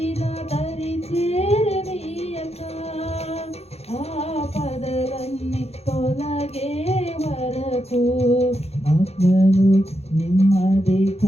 దరి చేరనీయక, ఆపదలన్నీ తొలగే వరకు, ఆత్మలు నెమ్మది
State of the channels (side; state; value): right; late; 0.30 ms